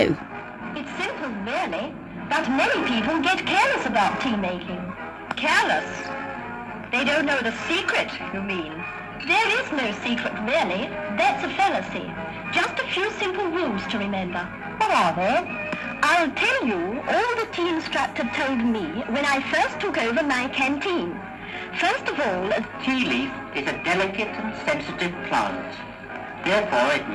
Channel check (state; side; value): identical; both; correlation 1.00